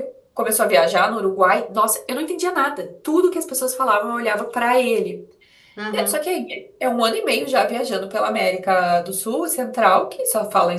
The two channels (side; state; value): both; identical; correlation 1.00